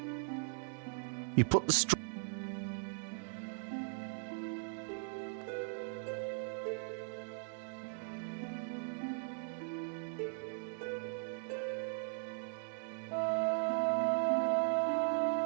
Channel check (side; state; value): left; silent; 52 dB below the other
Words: You put the straw.